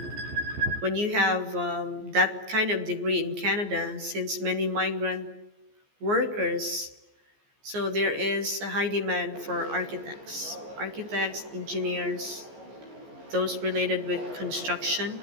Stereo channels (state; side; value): late; left; 14 ms